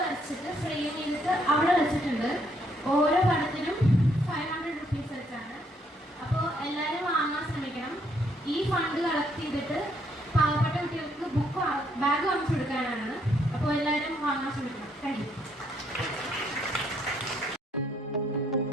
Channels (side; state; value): both; normal; correlation 0.71